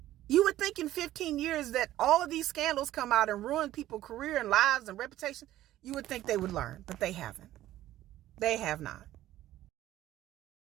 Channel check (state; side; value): quieter; left; 14.1 dB